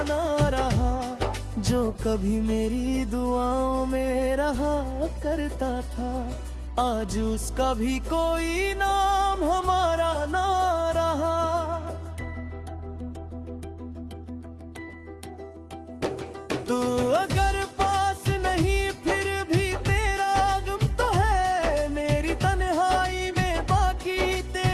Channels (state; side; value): identical; both; correlation 1.00